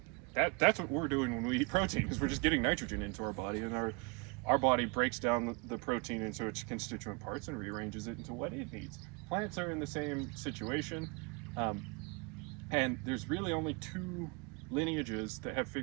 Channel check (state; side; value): quieter; left; 31.0 dB